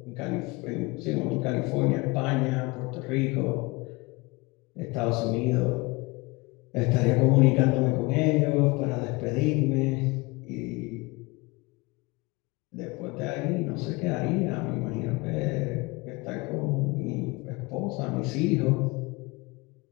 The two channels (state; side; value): quieter; right; 24.7 dB